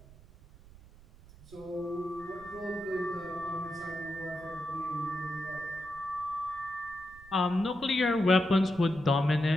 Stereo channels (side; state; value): right; noise; rumble, 22 dB below the sound